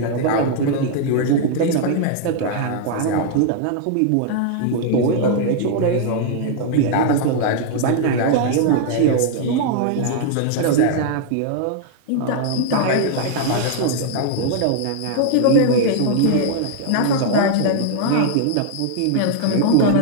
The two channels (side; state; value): both; different; correlation -0.01